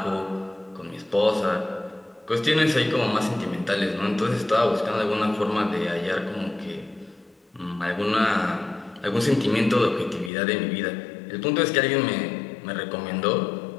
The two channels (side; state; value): right; drops out; at 10.3 s